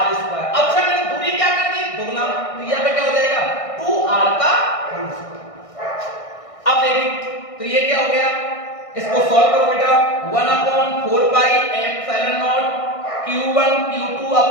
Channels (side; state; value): right; late; 1.6 ms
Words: स्क्वायर। अच्छा मैंने दूरी क्या कर दी, दोगुना, तो यहां पे क्या हो जाएगा, 2R का होल स्क्वायर। अब देखिए तो ये क्या हो गया, इसको सॉल्व करो बेटा, 1/4 pi epsilon naught Q1 Q2